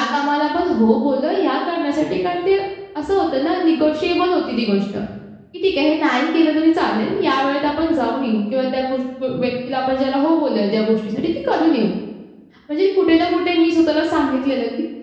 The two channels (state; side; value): identical; both; correlation 1.00